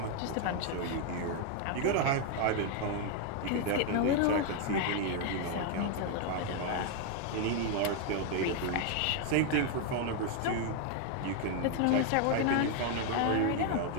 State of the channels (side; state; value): both; different; correlation 0.01